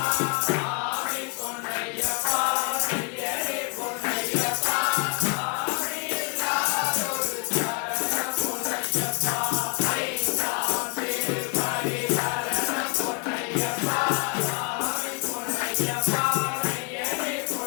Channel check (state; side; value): quieter; right; 34.8 dB